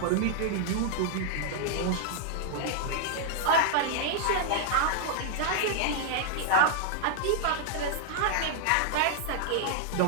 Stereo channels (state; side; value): different; both; correlation 0.00